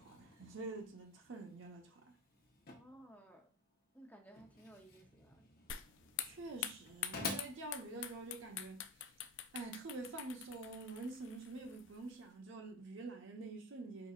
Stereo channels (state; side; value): normal; both; correlation 0.23